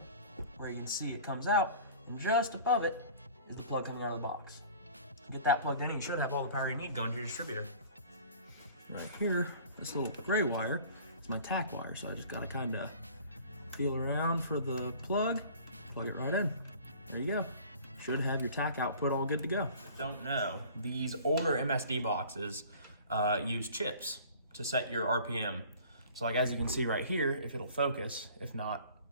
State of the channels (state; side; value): inverted; both; correlation -0.46